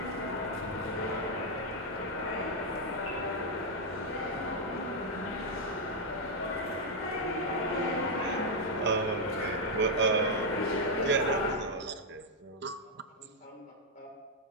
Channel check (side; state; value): both; normal; correlation -0.02